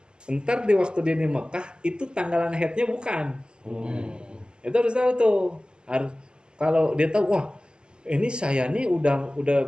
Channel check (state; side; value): late; left; 0.048 ms